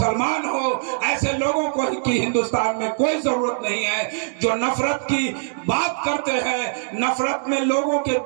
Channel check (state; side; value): silent; left; digital silence